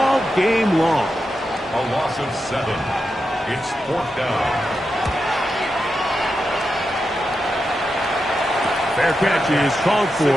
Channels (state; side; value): normal; both; correlation 0.88